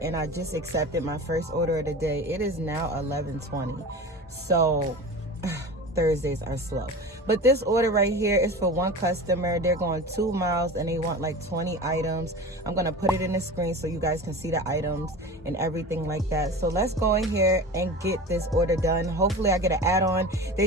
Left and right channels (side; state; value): both; normal; correlation 0.33